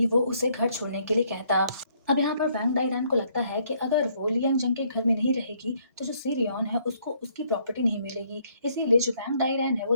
वो उसे घर छोड़ने के लिए कहता। अब यहाँ पर वैंग डाइरैन को लगता है कि अगर वो ली यंग जंग के घर में नहीं रहेगी तो जो सी रियॉन है उसको उसकी प्रॉपर्टी नहीं मिलेगी, इसीलिए जो वैंग डाइरैन है वो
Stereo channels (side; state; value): both; inverted; correlation -0.67